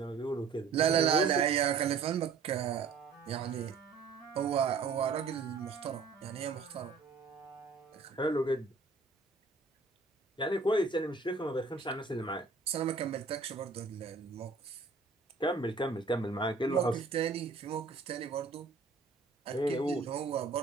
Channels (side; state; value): left; quieter; 4.7 dB